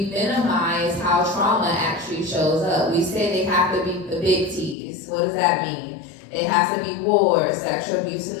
minimize how trauma actually shows up. We say they have to be the big T's. What does that mean? It has to be war, sexual abuse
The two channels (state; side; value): drops out; right; at 4.8 s